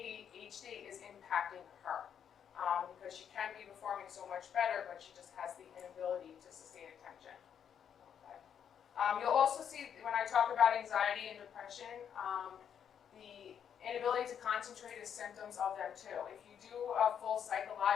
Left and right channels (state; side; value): quieter; right; 8.4 dB